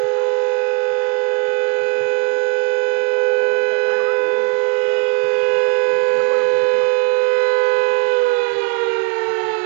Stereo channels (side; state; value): left; quieter; 32.3 dB